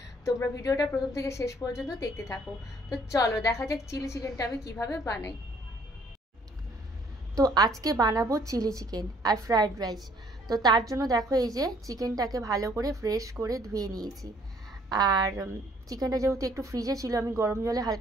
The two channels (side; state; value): both; normal; correlation 0.61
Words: তোমরা ভিডিওটা প্রথম থেকে শেষ পর্যন্ত দেখতে থাকো। তো চলো দেখা যাক চিলি চিকেনটা আমি কিভাবে বানাই। তো আজকে বানাবো চিলি চিকেন আর ফ্রায়েড রাইস। তো তার জন্য দেখো এই যে চিকেনটাকে ভালো করে ফ্রেশ করে ধুয়ে নিয়েছি। আর চিকেনটা যেহেতু একটু ফ্রিজে ছিল, আমি গরম জলে